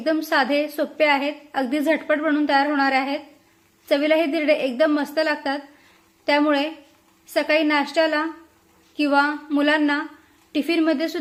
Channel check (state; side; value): identical; both; correlation 1.00